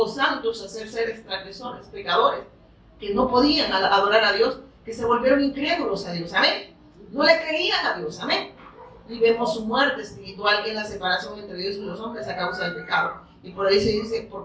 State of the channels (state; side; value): identical; both; correlation 1.00